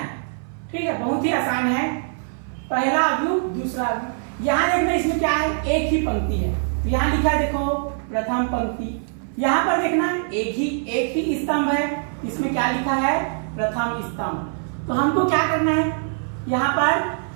ठीक है, बहुत ही आसान है। पहला अवयव, दूसरा अवयव। यहाँ देखना, इसमें क्या है, एक ही पंक्ति है। तो यहाँ लिखा है, देखो प्रथम पंक्ति। यहाँ पर देखना एक ही स्तंभ है, इसमें क्या लिखा है, प्रथम स्तंभ। तो हमको क्या करना है, यहाँ पर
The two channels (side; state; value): left; silent; 58 dB below the other